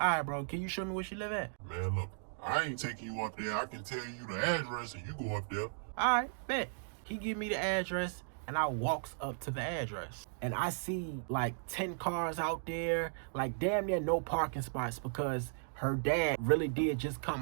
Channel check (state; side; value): silent; left; digital silence